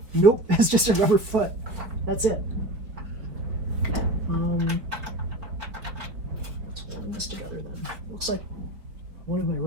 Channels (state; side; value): late; left; 4.6 ms